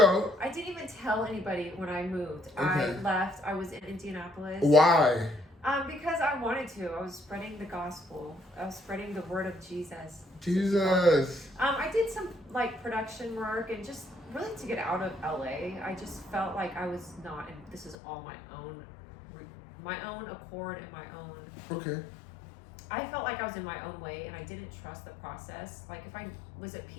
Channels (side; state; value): right; drops out; at 17.9 s